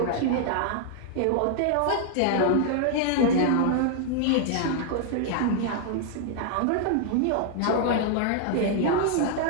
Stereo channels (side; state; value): both; different; correlation 0.00